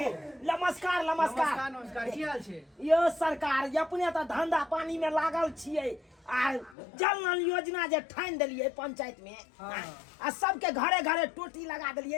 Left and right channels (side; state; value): right; drops out; at 6.8 s